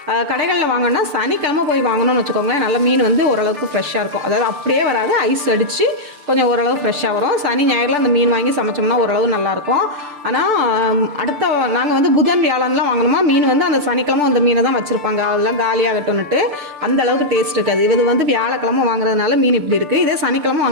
கடைகளில் வாங்கினா சனிக்கிழமை போய் வாங்கணும்னு வச்சுக்கோங்களேன், நல்ல மீன் வந்து ஓரளவுக்கு ஃப்ரெஷ்ஷாக இருக்கும். அதாவது அப்படியே வராது, ஐஸ் அடித்து கொஞ்சம் ஓரளவு ஃப்ரெஷ்ஷாக வரும். சனி ஞாயிறில் அந்த மீன் வாங்கி சமைச்சோம்னா ஓரளவு நல்லாயிருக்கும். ஆனால் அடுத்த நாங்கள் வந்து புதன் வியாழன்லாம் வாங்கணுமா மீன் வந்து அந்த சனிக்கிழமை அந்த மீனை தான் வச்சுருப்பாங்க. அதெல்லாம் காலியாகட்டும்னுட்டு அந்த அளவுக்கு டேஸ்ட் இருக்காது. இது வந்து வியாழக்கிழமை வாங்குறதுனால மீன் இப்படி இருக்குது. இதே சனிக்கிழமை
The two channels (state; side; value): late; left; 6.8 ms